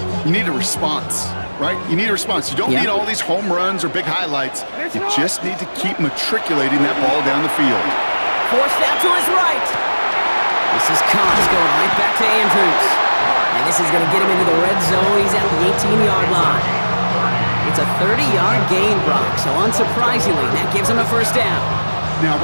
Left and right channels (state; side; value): inverted; both; correlation -1.00